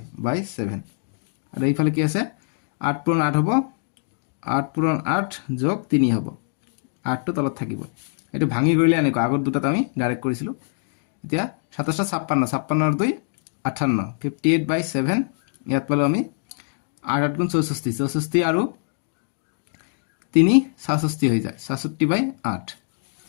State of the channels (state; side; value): silent; right; digital silence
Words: বাই 7 আৰু এইফালে কি আছে 8 পূৰণ 8 হ'ব 8 পূৰণ 8 যোগ 3 হ'ব 8 টো তলত থাকিব এইটো ভাঙি কৰিলে এনেকৈ আগৰ দুটাত আমি ডাইৰেক্ট কৰিছিলো এতিয়া 27 56 আৰু 2 58 58/7 ইয়াত পালো আমি 8 গুণ 64 64 আৰু 3 66 হৈ যায় 66/8